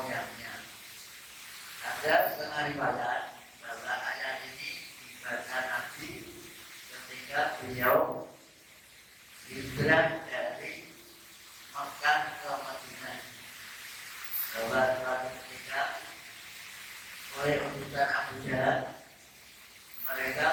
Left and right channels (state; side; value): identical; both; correlation 1.00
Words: Ada setengah riwayat bahwa ayat ini dibaca Nabi ketika beliau di hijrah dari Makkah ke Madinah. Bahwa ketika oleh utusan Abu Jahal,